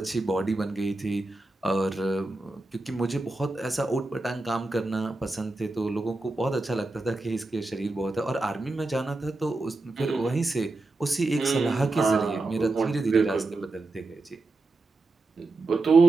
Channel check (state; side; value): quieter; left; 3.1 dB